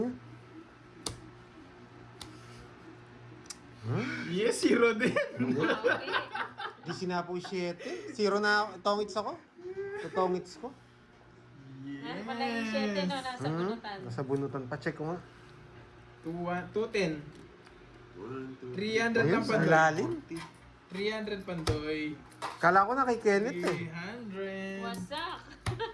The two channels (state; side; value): identical; both; correlation 1.00